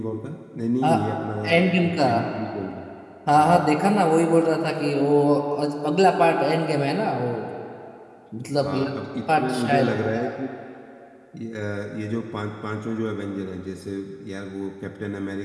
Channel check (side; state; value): both; identical; correlation 1.00